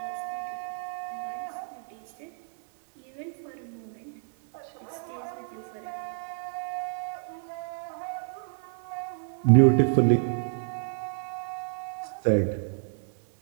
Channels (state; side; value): silent; left; 58 dB below the other